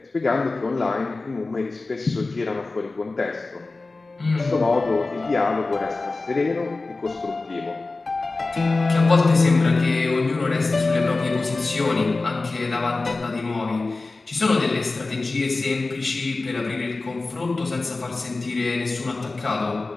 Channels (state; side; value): quieter; right; 3.5 dB